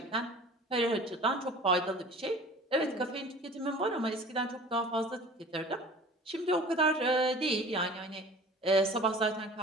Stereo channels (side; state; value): both; normal; correlation 0.44